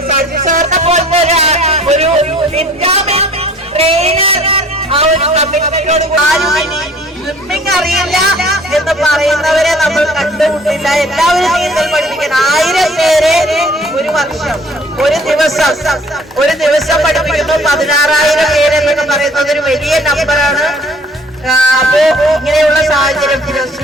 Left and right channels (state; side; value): normal; both; correlation 0.53